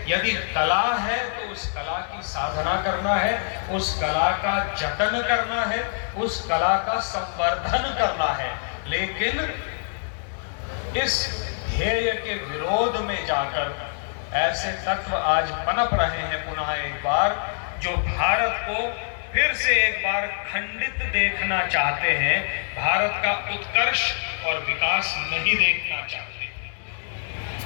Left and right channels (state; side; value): silent; right; digital silence